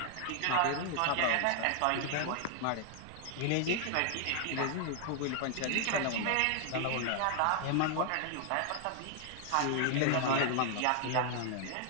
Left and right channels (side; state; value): both; different; correlation 0.00